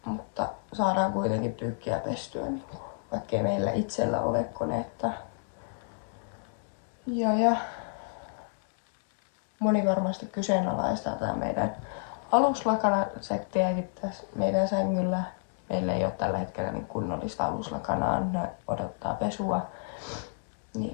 Mutta saadaan kuitenkin pyykkiä pestyä, niin vaikkei meillä itsellä ole koneetta. Ja moni varmasti kyseenalaistaa tää meidän aluslakanasettiäkin tässä meidän sängyllä. Meillä ei ole tällä hetkellä niin kunnollista aluslakanaa, ne odottaa pesua.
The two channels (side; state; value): right; silent; digital silence